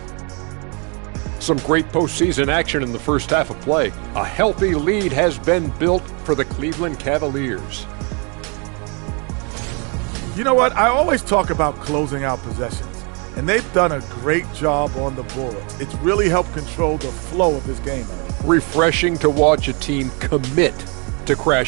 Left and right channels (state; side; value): quieter; left; 34.2 dB